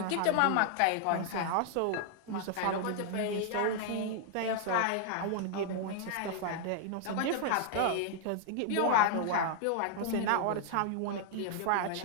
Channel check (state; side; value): different; both; correlation 0.00